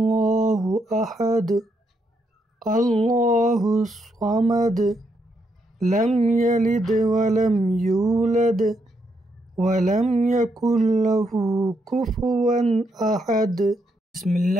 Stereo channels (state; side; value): normal; both; correlation 0.78